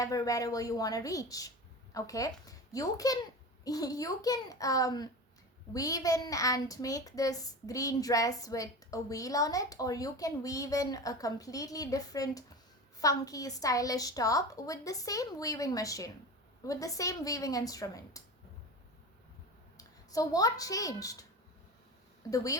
wherever you want to reach, okay. You can weave in and make this green dress with a wheel on it, or you can weave in a completely different funky stylish top with the same weaving machine, with the same weaving instrument. So what changed? The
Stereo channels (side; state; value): both; normal; correlation 0.29